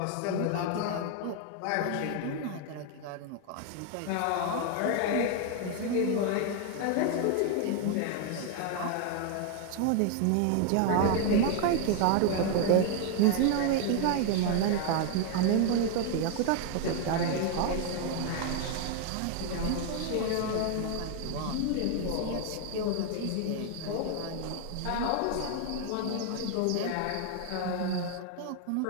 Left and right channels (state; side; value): different; both; correlation 0.00